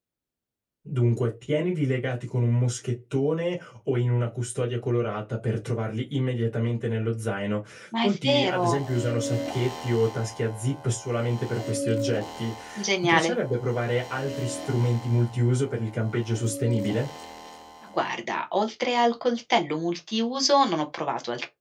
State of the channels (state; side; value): identical; both; correlation 1.00